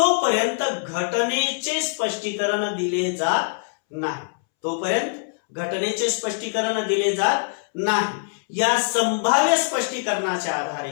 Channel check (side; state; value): right; silent; 63 dB below the other